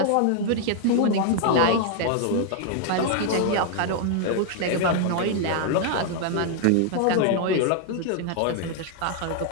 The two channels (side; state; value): both; different; correlation 0.00